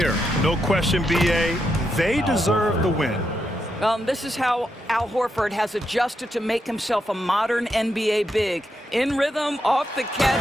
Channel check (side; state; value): both; normal; correlation 0.83